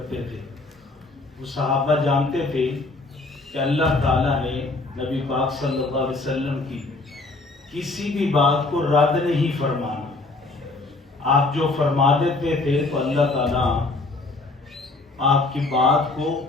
تھے۔ وہ صحابہ جانتے تھے کہ اللہ تعالیٰ نے نبی پاک صلی اللہ علیہ وسلم کی کسی بھی بات کو رد نہیں فرمانا۔ آپ جو فرما دیتے تھے تو اللہ تعالیٰ آپ کی بات کو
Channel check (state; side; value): quieter; right; 3.3 dB